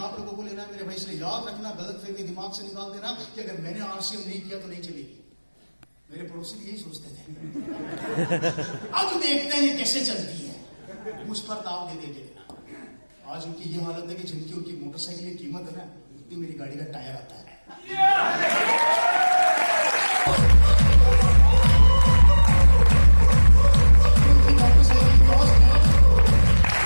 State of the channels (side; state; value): both; inverted; correlation -1.00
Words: लोगों को लेना है। मेरे भाई से याद रखना, गलत फहमी दिमाग से निकाल देना कि अगर मैंने RCM नहीं किया तो नहीं चलेगी। मेरे पड़ोसी यही सोचते थे। अब देखते हैं ये कैसे चलती है, मुझ पर दाव दे देंगे। आज उनकी ये हालत है कि जिनकी उनकी मोटरसाइकिल की कीमत है ना, उतनी मेरी गाड़ी का टायर आता है।